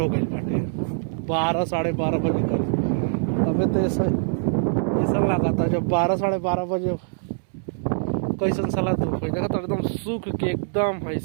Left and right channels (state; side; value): silent; left; 63 dB below the other